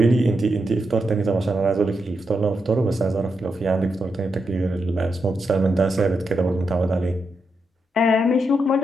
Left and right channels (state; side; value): normal; both; correlation 0.84